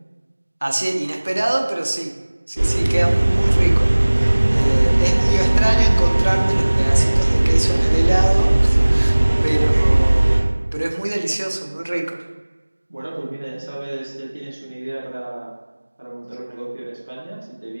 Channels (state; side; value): inverted; both; correlation -1.00